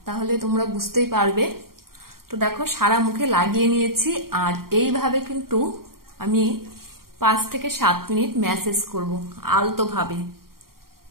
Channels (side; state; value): left; late; 0.93 ms